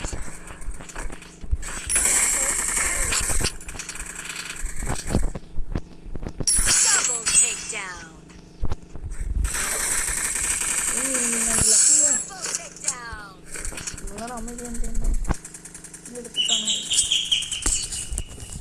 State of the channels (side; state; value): both; identical; correlation 1.00